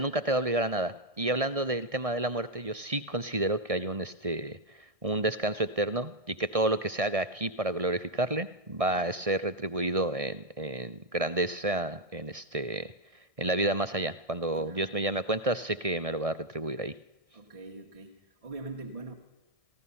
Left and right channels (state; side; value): late; left; 1.6 ms